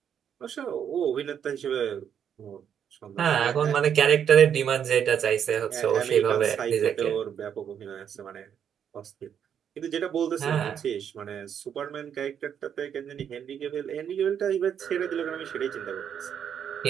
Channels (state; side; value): quieter; left; 8.5 dB